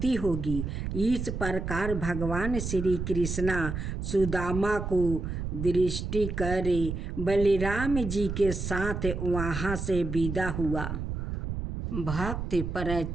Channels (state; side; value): noise; right; rumble, 4 dB below the sound